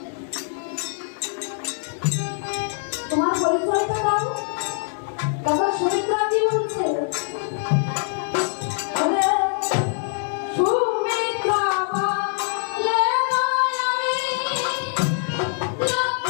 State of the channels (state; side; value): silent; right; digital silence